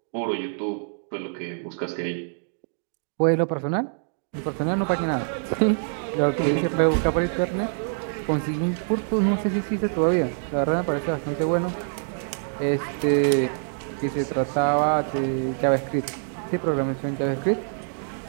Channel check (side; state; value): left; silent; digital silence